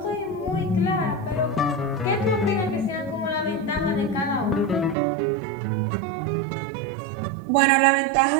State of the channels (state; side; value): drops out; left; at 5.0 s